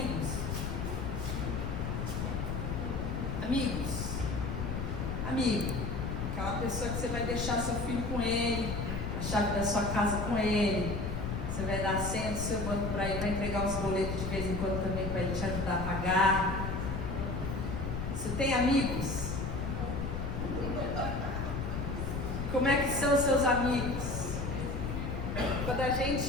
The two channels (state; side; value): noise; left; rumble, 3 dB below the sound